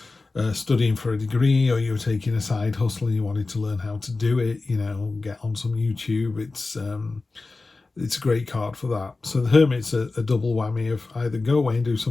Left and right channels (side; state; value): right; quieter; 3.6 dB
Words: studying for a degree, or you were taking a side hustle and you wanted to learn how to do it. You know, get on some YouTube. It's a great card for that. So the Hermit's a double whammy of either go away and do